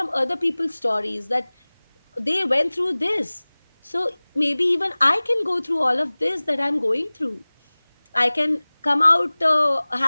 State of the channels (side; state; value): both; inverted; correlation -1.00